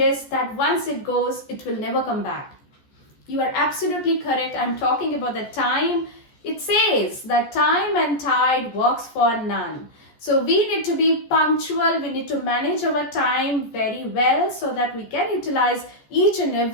that once it goes, it will never come back. You are absolutely correct. I'm talking about the time. It says that time and tide works for none. So we need to be punctual. We need to manage our time very well so that we can utilize each and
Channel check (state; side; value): late; right; 14 ms